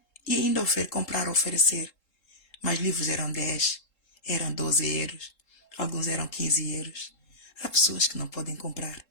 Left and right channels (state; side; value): late; right; 3.7 ms